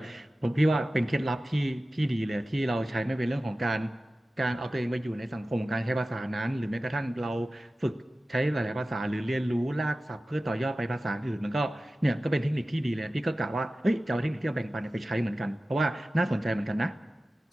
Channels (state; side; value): normal; both; correlation 0.96